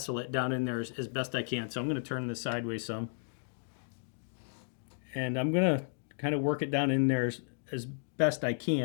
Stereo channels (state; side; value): silent; right; digital silence